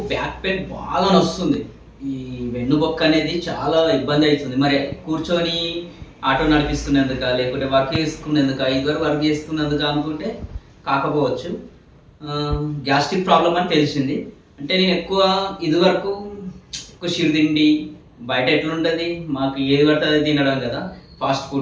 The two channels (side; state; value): both; identical; correlation 1.00